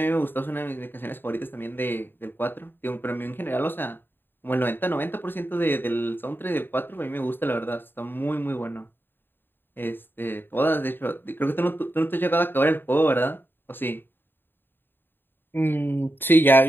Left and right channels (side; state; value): right; late; 0.097 ms